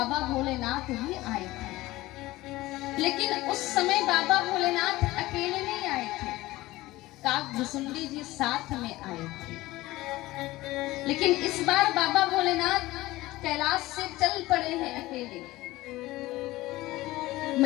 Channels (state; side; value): quieter; right; 18.2 dB